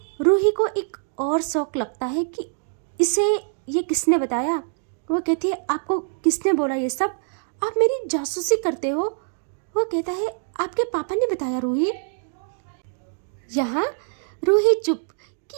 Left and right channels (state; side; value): silent; left; 62 dB below the other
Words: रूही को एक और शौक लगता है कि इसे ये किसने बताया। वो कहती है, आपको किसने बोला ये सब? आप मेरी जासूसी करते हो। वो कहता है, आपके पापा ने बताया रूही। यहाँ रूही चुप